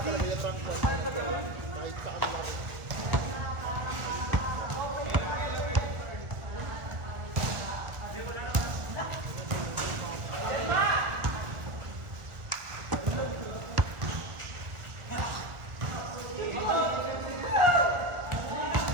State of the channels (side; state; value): left; late; 1.4 ms